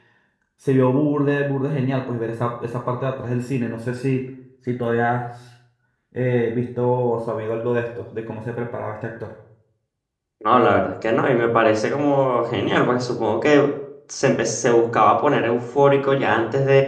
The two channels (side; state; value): both; identical; correlation 1.00